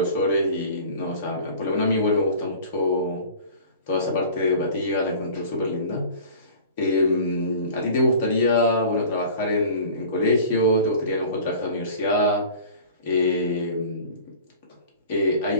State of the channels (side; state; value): both; inverted; correlation -0.43